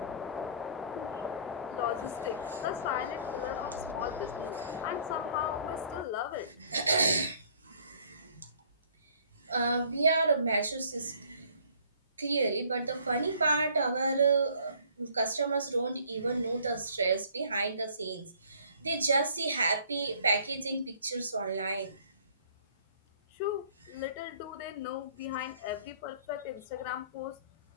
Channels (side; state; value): both; inverted; correlation -0.56